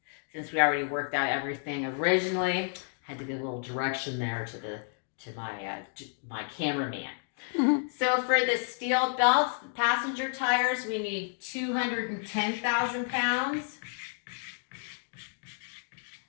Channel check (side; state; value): right; silent; 56 dB below the other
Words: since we already worked out everything originally. Had to give a little direction there to my cameraman. Mm-hmm. So for the steel belts, the passenger tires, we need 210,000 pounds.